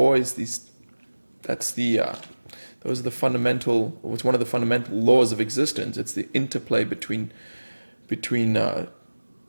these. That's the. Those are the fundamental. It's one of the fundamental laws of existence. It's the interplay between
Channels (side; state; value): both; inverted; correlation -1.00